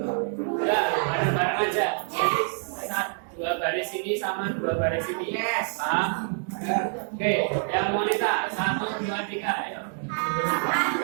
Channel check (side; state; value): left; silent; 55 dB below the other